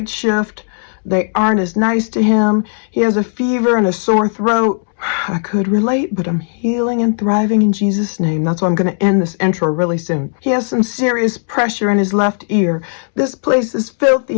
shift. They aren't as nice to him. He has a fever and a sore throat. I could relate, but I'm healing and thriving in Jesus' name. That's why I'm going to end this intro really soon. He has some serious pressure in his left ear. This place is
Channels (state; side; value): silent; right; 69 dB below the other